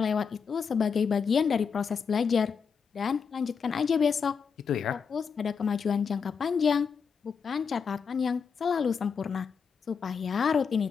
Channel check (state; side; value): quieter; right; 6.1 dB